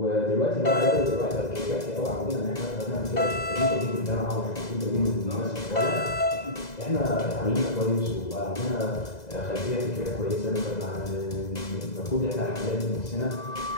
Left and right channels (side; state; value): right; late; 2.0 ms